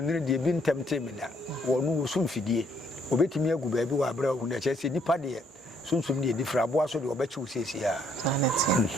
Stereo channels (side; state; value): both; normal; correlation 0.68